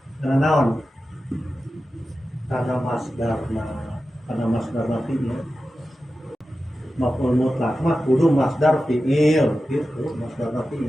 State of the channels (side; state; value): both; normal; correlation 0.93